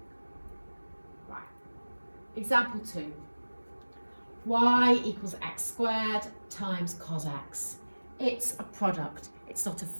Right. Example 2. Y equals x squared times cos x. It's a product. It's not a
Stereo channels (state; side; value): inverted; both; correlation -1.00